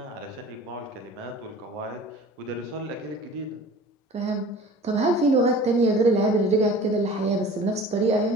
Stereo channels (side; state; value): both; normal; correlation 0.43